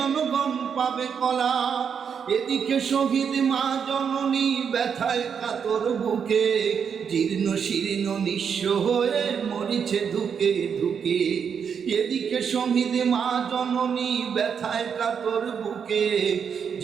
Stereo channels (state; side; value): quieter; left; 7.0 dB